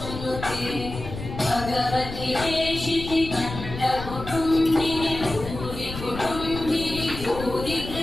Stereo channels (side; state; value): left; noise; rumble, 9 dB below the sound